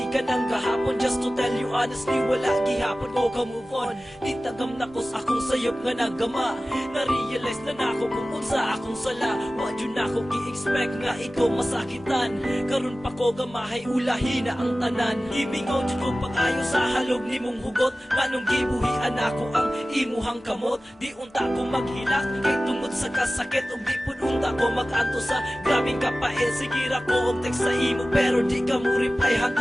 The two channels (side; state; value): both; normal; correlation 0.96